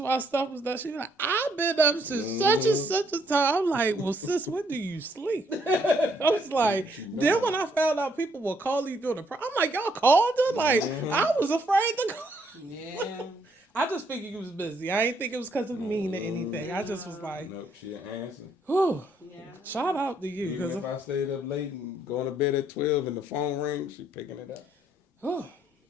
stuff was done, she be like, I've been up since such and such a time. I'm like, well, sis, when do you sleep? I was like, then when I found out people were calling you during the I'm like, y'all called her? Like, I was afraid to call. Yeah. I just figured you was busy. I ain't think it was because of me or anything. I just was like, No, she'll answer. whew, Yeah. shout out to you. Even Because, if I stayed up late and going to bed at 12 and the phone rings, she picking it up.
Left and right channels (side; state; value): both; normal; correlation 0.70